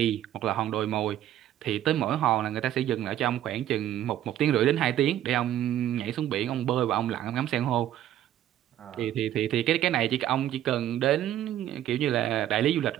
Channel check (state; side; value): quieter; left; 12.1 dB